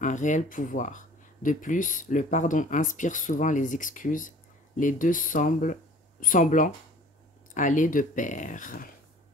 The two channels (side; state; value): both; normal; correlation 0.48